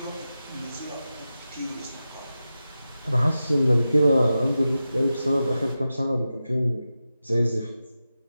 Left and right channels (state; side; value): inverted; both; correlation -0.92